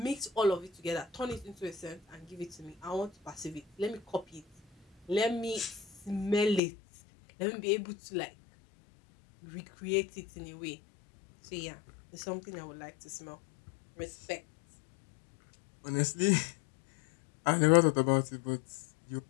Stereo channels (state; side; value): drops out; right; at 6.6 s